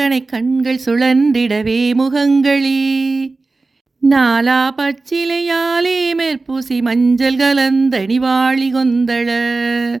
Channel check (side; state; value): left; quieter; 3.6 dB